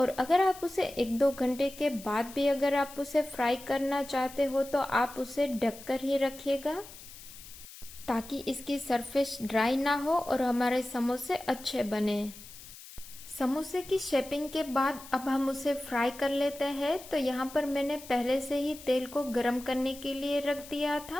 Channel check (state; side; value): noise; left; hiss, 17 dB below the sound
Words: अगर आप उसे 1-2 घंटे के बाद भी अगर आप उसे फ्राई करना चाहते हो तो आप उसे ढककर ही रखिएगा ताकि इसकी सरफेस ड्राई ना हो और हमारे समोसे अच्छे बने। समोसे की शेपिंग के बाद अब हम उसे फ्राई कर लेते हैं। तो यहाँ पर मैंने पहले से ही तेल को गर्म करने के लिए रख दिया